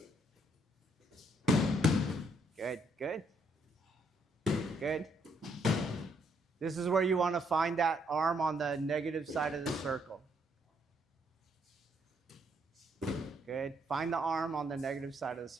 Good, good. Good. This is where you want to find that arm on the negative side of the circle. Good. Find the arm on the negative side of the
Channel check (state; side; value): normal; both; correlation 0.71